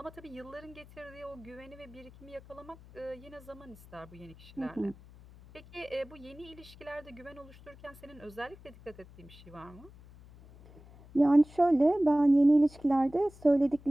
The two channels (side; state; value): left; noise; hum, 21 dB below the sound